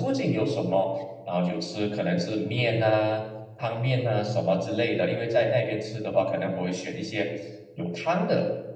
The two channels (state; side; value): identical; both; correlation 1.00